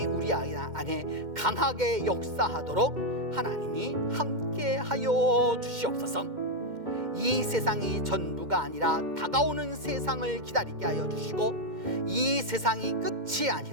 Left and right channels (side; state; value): left; late; 2.1 ms